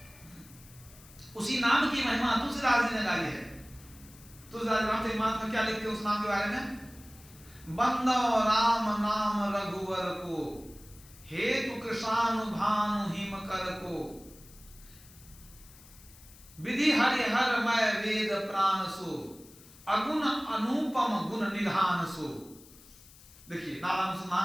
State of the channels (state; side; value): noise; left; hiss, 22 dB below the sound